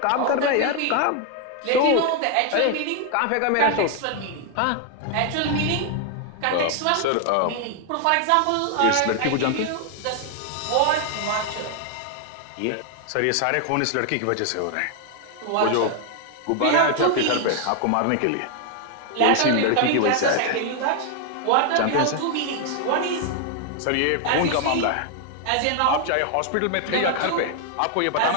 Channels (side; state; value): both; different; correlation 0.00